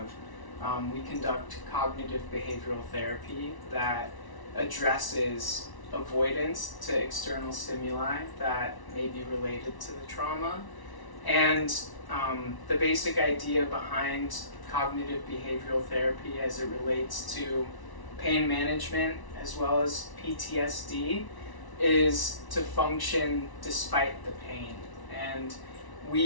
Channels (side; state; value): right; late; 1.0 ms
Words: we conduct cognitive behavioral therapy that addresses avoidance to external stimuli that may be related to the trauma. And the basic idea behind cognitive behavioral therapy as it relates to pain management as well as PTSD is to function despite the pain. And